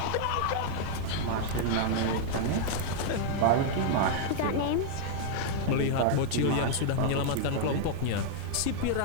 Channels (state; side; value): different; both; correlation -0.01